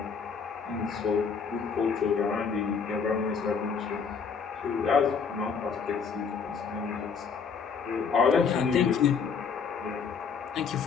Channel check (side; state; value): right; quieter; 5.9 dB